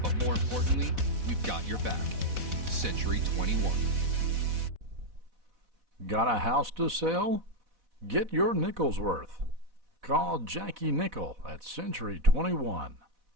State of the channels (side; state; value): left; late; 4.1 ms